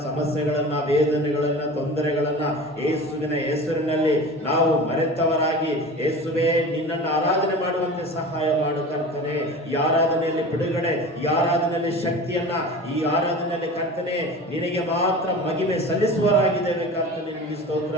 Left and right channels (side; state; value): both; normal; correlation 0.35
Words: ಸಮಸ್ಯೆಗಳನ್ನ, ವೇದನೆಗಳನ್ನ, ತೊಂದರೆಗಳನ್ನ ಯೇಸುವಿನ ಹೆಸರಿನಲ್ಲಿ ನಾವು ಮರೆತವರಾಗಿ ಯೇಸುವೇ ನಿನ್ನನ್ನು ಆರಾಧನೆ ಮಾಡುವಂತೆ ಸಹಾಯ ಮಾಡು ಕರ್ತನೆ. ಈ ಆರಾಧನೆಯಲ್ಲಿ ಬಿಡುಗಡೆ, ಈ ಆರಾಧನೆಯಲ್ಲಿ ಶಕ್ತಿಯನ್ನ, ಈ ಆರಾಧನೆಯಲ್ಲಿ ಕರ್ತನೆ ನಿನಗೆ ಮಾತ್ರ ಮಹಿಮೆ ಸಲ್ಲಿಸುವರಾಗಿದ್ದೇವೆ ಕರ್ತನೆ. ನಿನಗೆ ಸ್ತೋತ್ರ.